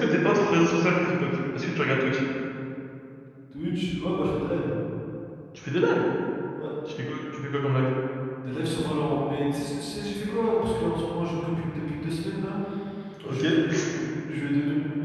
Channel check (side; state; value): both; identical; correlation 1.00